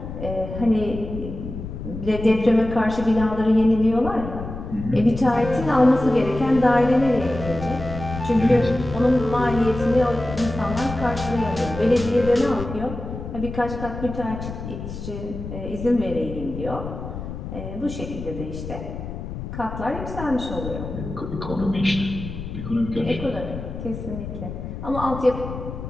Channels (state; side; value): noise; left; rumble, 8 dB below the sound